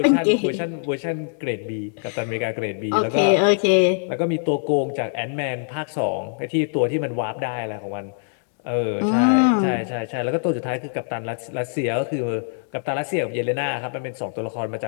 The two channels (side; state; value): right; silent; digital silence